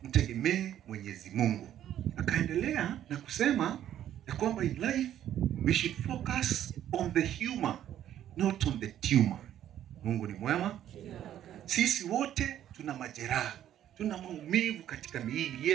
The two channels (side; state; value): left; quieter; 11.2 dB